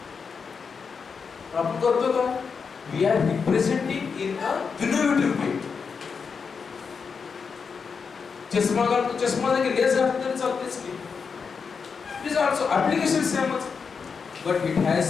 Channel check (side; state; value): right; quieter; 5.6 dB